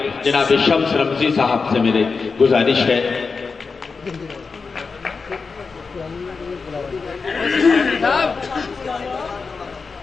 جناب شمس رمزی صاحب سے میری گزارش ہے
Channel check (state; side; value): quieter; right; 4.7 dB